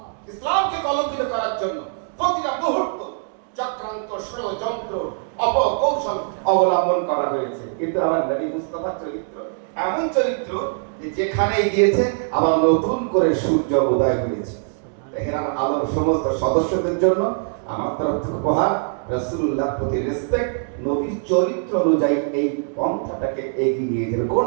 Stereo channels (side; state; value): left; silent; digital silence